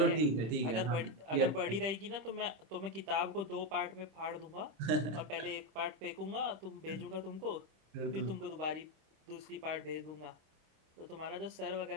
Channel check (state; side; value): late; left; 26 ms